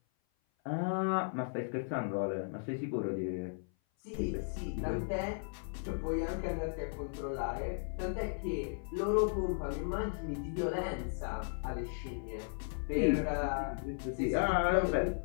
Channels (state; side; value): silent; right; 54 dB below the other